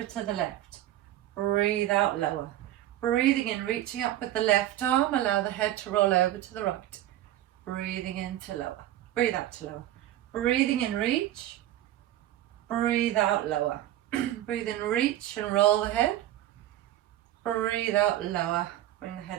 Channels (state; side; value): quieter; left; 13.5 dB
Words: to the left. Breathe out, lower. Breathing in, reaching up with the left arm. Allow the head to roll over to the right. Breathing in to lower. Breathe out to lower. Breathing in, reach. Breathe out, lower. Breathe in, reach and roll the head. Breathe out, lower. Bring the